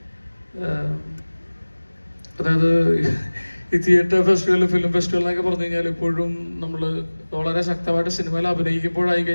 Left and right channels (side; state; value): both; inverted; correlation -1.00